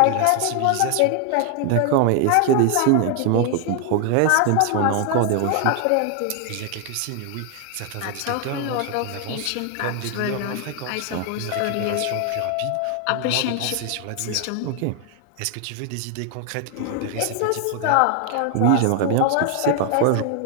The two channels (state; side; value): different; both; correlation 0.00